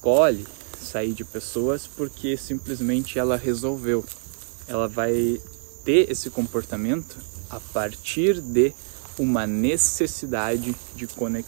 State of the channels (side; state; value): left; silent; digital silence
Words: sair de pessoas porque simplesmente ela resolveu. Ela vai ter esse comportamento a partir de uma necessidade de